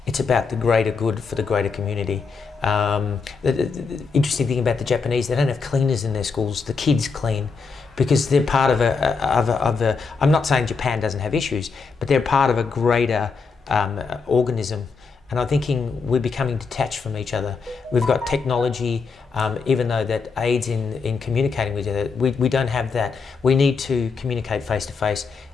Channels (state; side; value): quieter; right; 4.9 dB